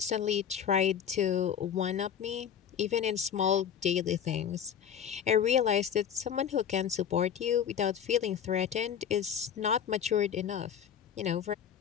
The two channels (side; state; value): right; quieter; 8.5 dB